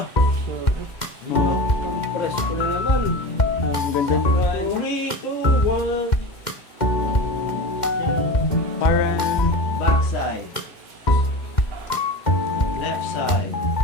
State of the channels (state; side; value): late; right; 2.1 ms